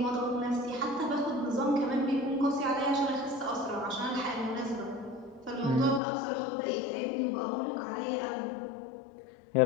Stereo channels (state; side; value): drops out; right; at 6.0 s